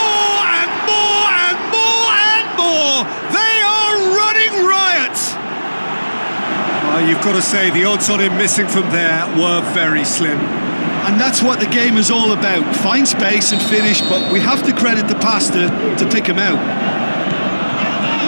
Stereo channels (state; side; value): inverted; both; correlation -1.00